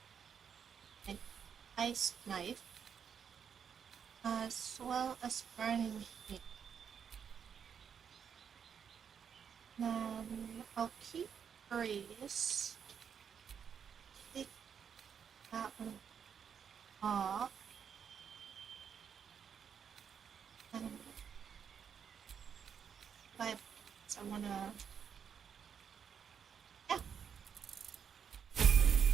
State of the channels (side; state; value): left; quieter; 7.4 dB